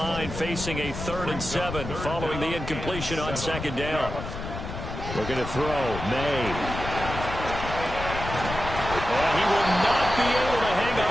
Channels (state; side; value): noise; left; rumble, 7 dB below the sound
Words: facing a 3rd and 7 following the incompletion on 2nd down. Looking to throw, May. And he will not be able to hang